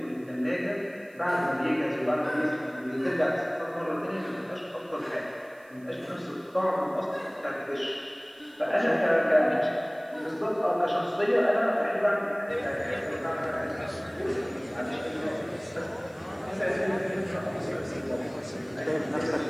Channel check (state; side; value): noise; right; hiss, 30 dB below the sound